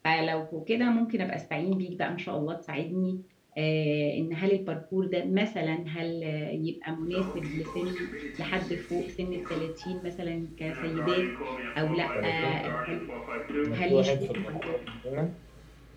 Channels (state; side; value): identical; both; correlation 1.00